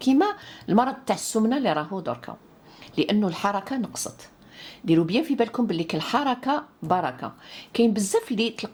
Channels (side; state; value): both; identical; correlation 1.00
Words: المرض تاع السمنه اللي راهو دركا، لانه الحركه نقصت. ديروا بيان في بالكم باللي الحركه بركه. كاين بزاف اللي